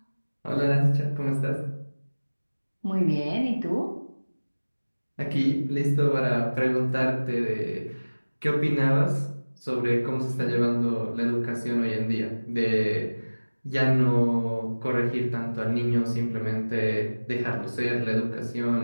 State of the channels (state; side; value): inverted; both; correlation -1.00